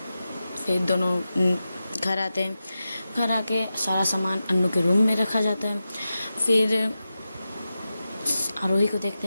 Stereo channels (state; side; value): inverted; both; correlation -0.92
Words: फिर दोनों घर आते हैं। घर आके सारा सामान अन्नू के रूम में रखा जाता है। फिर आरोही को देखते